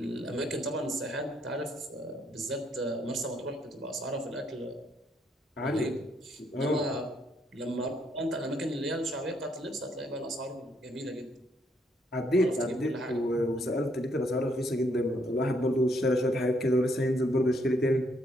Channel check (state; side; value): normal; both; correlation 0.71